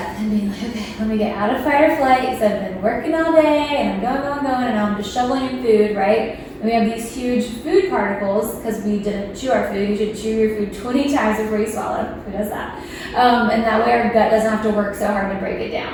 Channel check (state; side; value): identical; both; correlation 1.00